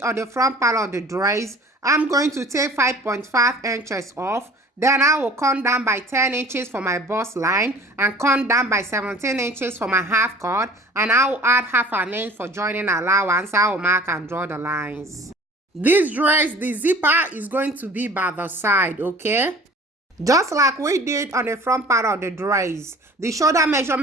on the front part of the dress, I'm going to take 5.5 inches off. Then I will come down by 10 inches for my bust line and come down by 17 inches for my half cut. And I will add half an inch for joining allowance. I will mark and draw the lines. This dress, the zipper is going to be by the side, okay? Just like we did on the front part of the dress, the shoulder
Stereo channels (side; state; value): both; normal; correlation 0.46